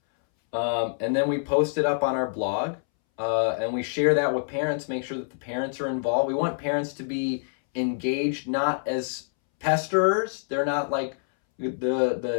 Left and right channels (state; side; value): silent; right; 61 dB below the other